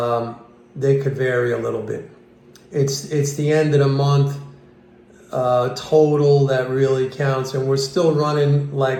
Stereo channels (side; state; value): both; identical; correlation 1.00